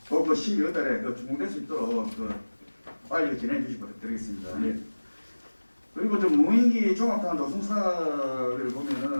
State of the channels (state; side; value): inverted; both; correlation -1.00